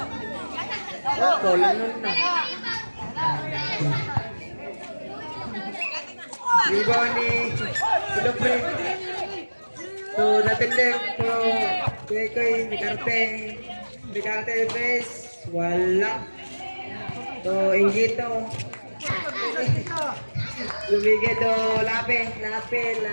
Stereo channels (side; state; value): both; inverted; correlation -1.00